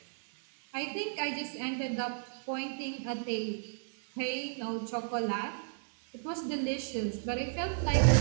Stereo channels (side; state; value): left; silent; 56 dB below the other